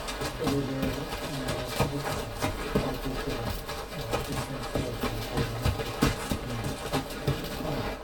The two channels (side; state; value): both; identical; correlation 1.00